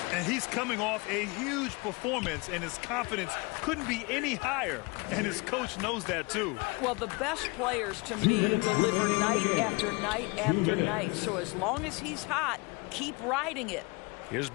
And he's coming off a huge performance, and his confidence couldn't be any higher. And his coach knows that, too. Well, the best players, to me, deliver night after night after night. So as long as he's hot, keep riding it. Here's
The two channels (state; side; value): quieter; right; 27.4 dB